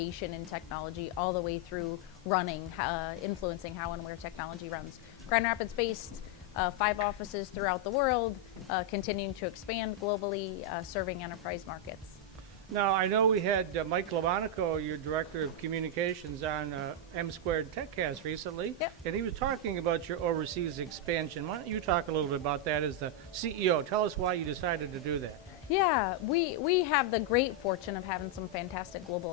in technology, all the way through running, influencing how and where technology runs. Grand Rapids-based, 5 offices throughout the world, continuing to expand globally, serving enterprise markets. Now, I know we had Mike Lamonico, your Director of Communications, on M Squared TechCast recently, Yep. and he was talking about your overseas expansion. Why don't you talk a little bit about that as the CEO? Tell us why you decided to do that. Yeah, we have the great fortune of having some fantastic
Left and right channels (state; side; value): normal; both; correlation -0.01